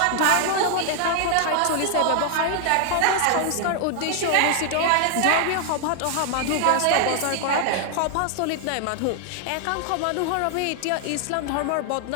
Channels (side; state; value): both; different; correlation 0.00